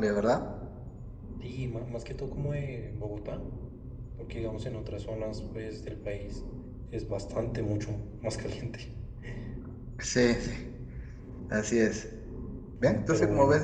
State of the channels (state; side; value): identical; both; correlation 1.00